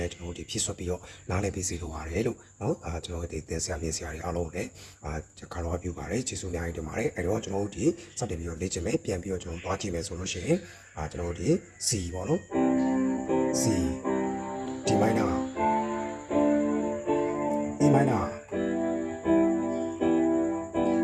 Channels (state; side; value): identical; both; correlation 1.00